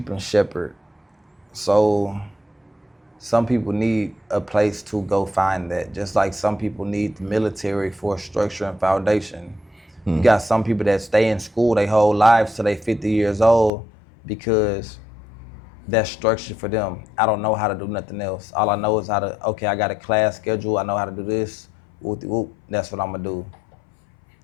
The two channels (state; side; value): drops out; right; at 13.7 s